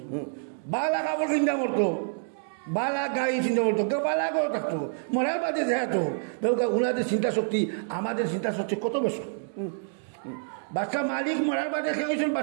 বালা কাপড় চিন্তা করতো বালা গাড়ি চিন্তা করতো কেউ বালা করে থাকতো মরার বাদে যেহেতু ওনাদের চিন্তা শক্তি আমাদের চিন্তা শক্তি কত বেশি বাচ্চা মালিক মরার বাদে খেয়ে গেছেন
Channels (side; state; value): left; silent; digital silence